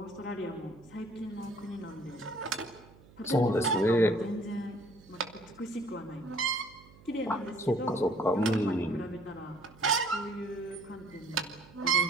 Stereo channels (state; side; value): noise; right; hum, 24 dB below the sound